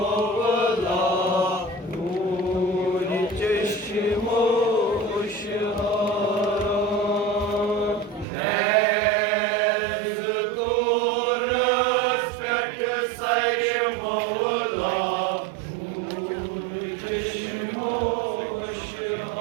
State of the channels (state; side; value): drops out; left; at 8.2 s